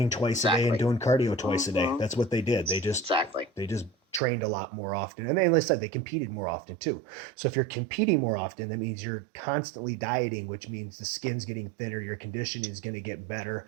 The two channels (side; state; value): left; drops out; at 4.2 s